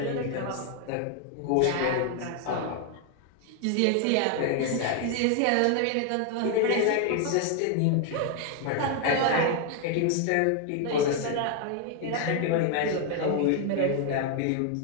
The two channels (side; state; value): both; different; correlation 0.00